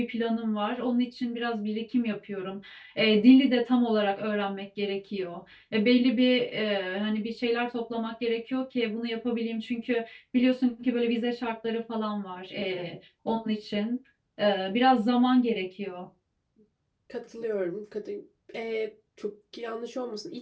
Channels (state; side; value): identical; both; correlation 1.00